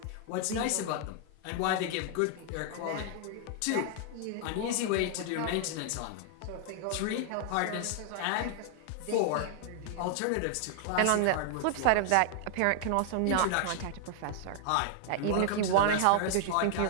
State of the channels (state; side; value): different; both; correlation 0.00